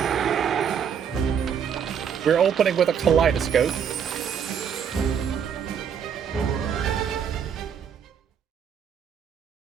We're opening with a kaleidoscope.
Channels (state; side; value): quieter; left; 7.7 dB